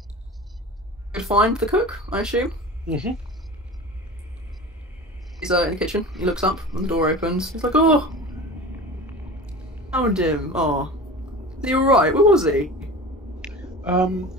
Good find the cook, I assume. Mm-hmm. He's in the kitchen. He looks up when the door opens. He's like, "Oh, found him. Oh, is he alright? Where was he?" And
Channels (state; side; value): normal; both; correlation 0.35